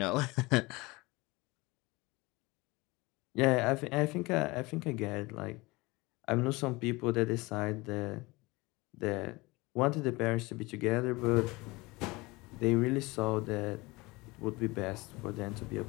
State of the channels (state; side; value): quieter; right; 23.1 dB